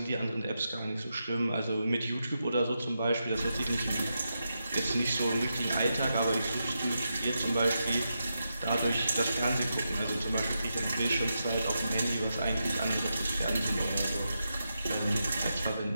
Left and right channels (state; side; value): inverted; both; correlation -0.86